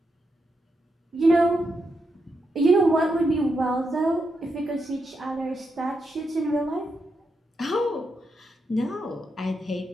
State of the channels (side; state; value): both; normal; correlation 0.84